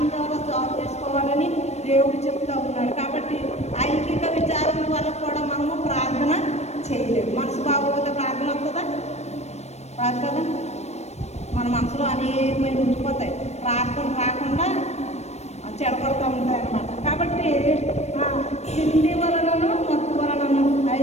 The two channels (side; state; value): right; late; 0.32 ms